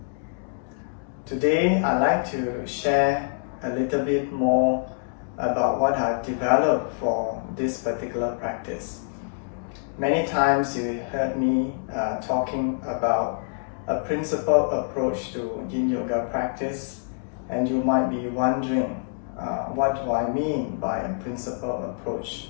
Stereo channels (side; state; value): right; silent; digital silence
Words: Today I'd like to share a little bit more about what I've developed for this particular practice. Many times you heard me talking about a principled approach to Yin Yoga practice, and you might be wondering what do I mean by a principled approach